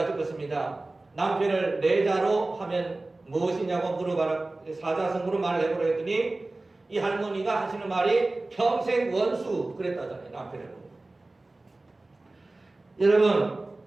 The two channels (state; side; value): quieter; left; 3.0 dB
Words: 것입니다. 남편을 내자로 하면 무엇이냐고 물어봐라, 사자성어로 말을 해보라 했더니 이 할머니가 하시는 말이 평생 원수 그랬다잖아요. 남편을. 여러분,